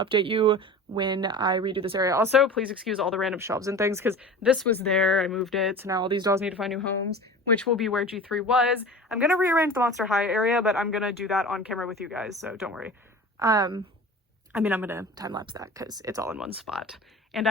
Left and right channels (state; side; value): normal; both; correlation 0.36